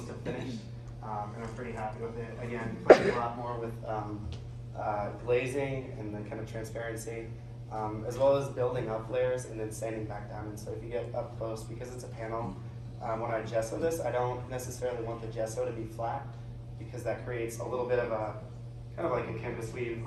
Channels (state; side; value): identical; both; correlation 1.00